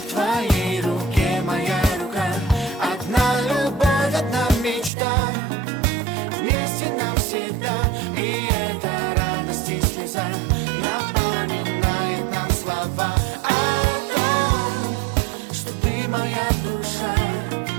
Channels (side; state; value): left; drops out; at 4.9 s